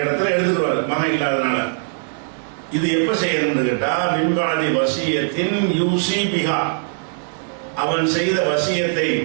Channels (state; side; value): silent; left; digital silence